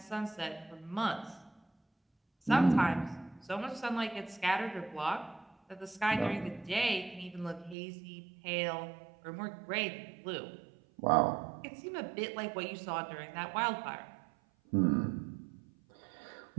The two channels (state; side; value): drops out; left; at 7.8 s